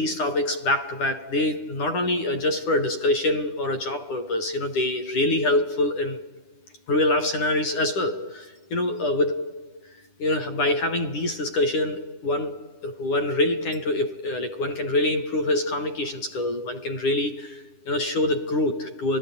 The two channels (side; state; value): right; late; 10 ms